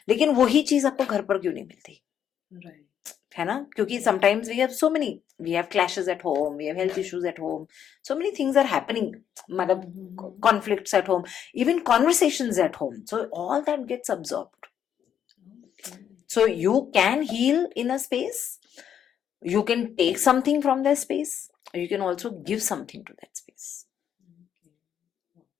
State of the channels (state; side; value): quieter; right; 9.0 dB